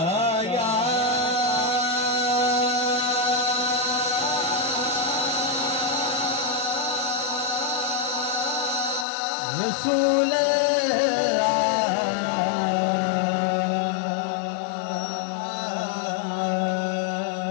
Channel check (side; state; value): right; drops out; at 9.1 s